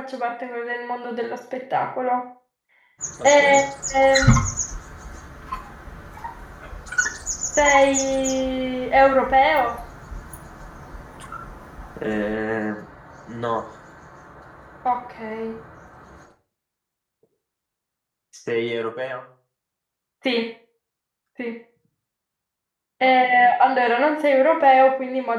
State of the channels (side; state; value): both; identical; correlation 1.00